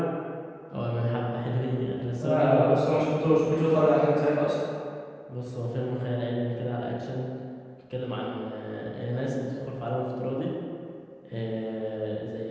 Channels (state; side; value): identical; both; correlation 1.00